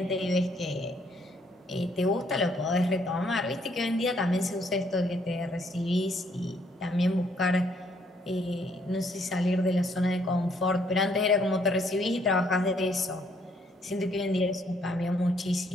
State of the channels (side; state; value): both; normal; correlation 0.68